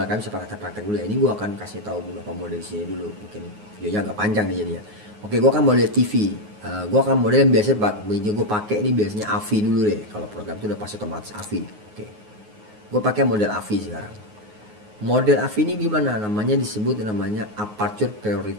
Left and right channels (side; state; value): left; late; 9.5 ms